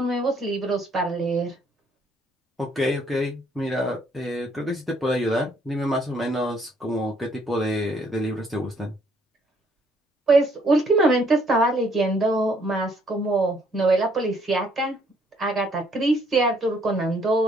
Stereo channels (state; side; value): normal; both; correlation 0.66